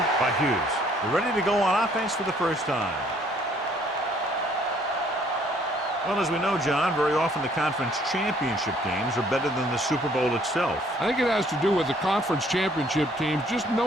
by Hughes. They're ready to go on offense for the first time. Well, as we know, John, very often the conference championship games are better than the Super Bowl itself. I think it has to do with the conference championship teams just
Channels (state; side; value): normal; both; correlation 0.62